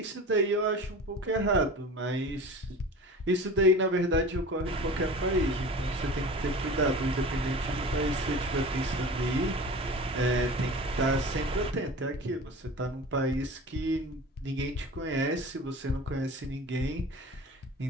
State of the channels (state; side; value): normal; both; correlation 0.37